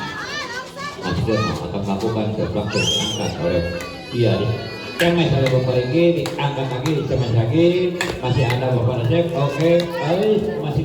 Mas Kirno akan melakukan langsung diangkat oleh cemes oleh Bapak Riki diangkat lagi cemes lagi masih ada Bapak Nasib. Oke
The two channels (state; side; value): identical; both; correlation 1.00